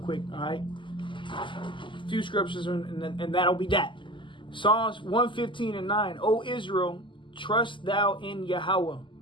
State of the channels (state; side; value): late; right; 0.24 ms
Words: all right? A few scriptures, and that'll be that. Psalms 115:9. O Israel, trust thou in Yahweh.